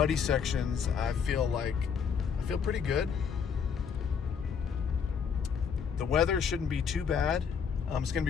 sections, I feel pretty good. The weather shouldn't be too bad. It's going to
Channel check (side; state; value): right; quieter; 6.7 dB